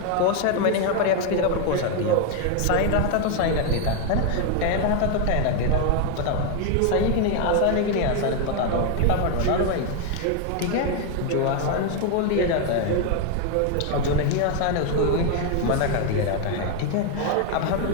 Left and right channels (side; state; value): both; different; correlation 0.01